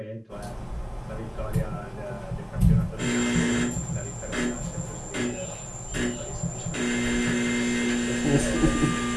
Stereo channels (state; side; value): identical; both; correlation 1.00